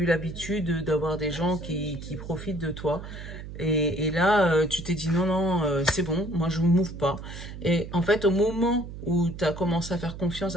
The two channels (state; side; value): noise; right; hum, 11 dB below the sound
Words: l'habitude d'avoir des gens qui profitent de toi. Et là, tu t'es dit non, non, c'est bon, moi, je ne m'ouvre pas. Et en fait, au moment où tu as commencé à faire confiance